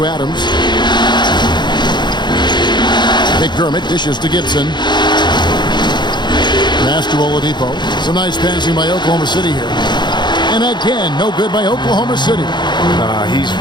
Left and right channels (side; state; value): right; late; 0.21 ms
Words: Adams. McDermott dishes to Gibson. Pass to Oladipo. Some nice passing by Oklahoma City here. And again, no good by Oklahoma City. He's